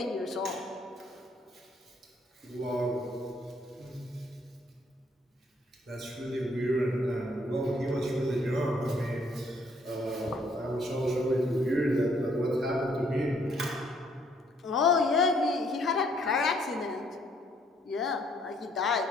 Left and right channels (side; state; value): both; normal; correlation 0.66